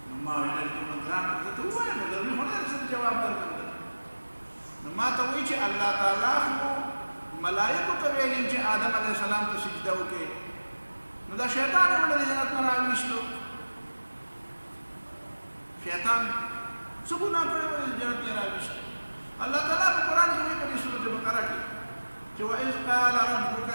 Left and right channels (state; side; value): inverted; both; correlation -1.00